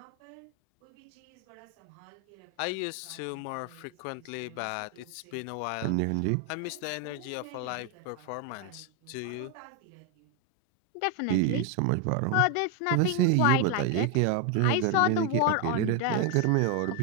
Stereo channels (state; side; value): different; both; correlation 0.01